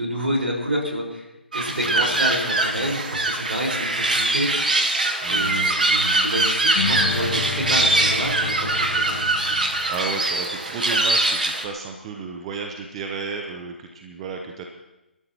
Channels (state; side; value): normal; both; correlation 0.31